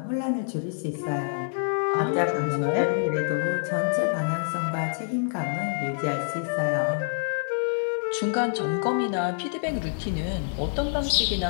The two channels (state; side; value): silent; right; digital silence